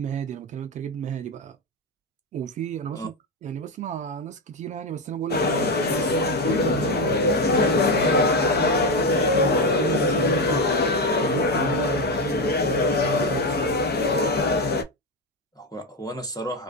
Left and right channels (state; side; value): normal; both; correlation 0.12